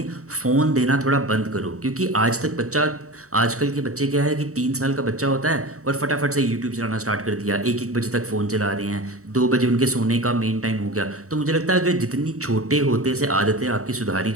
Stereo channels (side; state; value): left; late; 0.65 ms